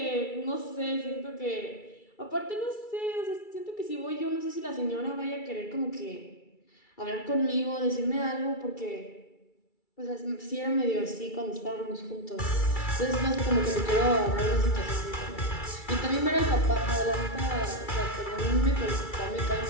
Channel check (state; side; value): late; right; 2.3 ms